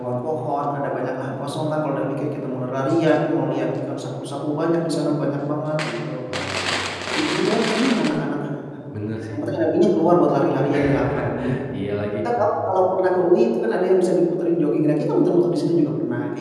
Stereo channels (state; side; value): identical; both; correlation 1.00